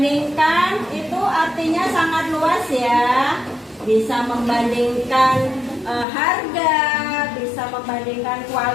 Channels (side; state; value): right; drops out; at 6.1 s